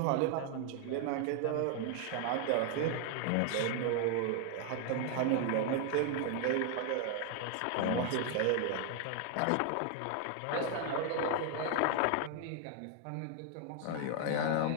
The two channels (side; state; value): both; different; correlation 0.00